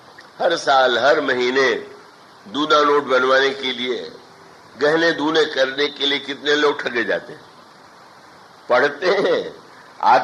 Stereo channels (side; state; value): both; identical; correlation 1.00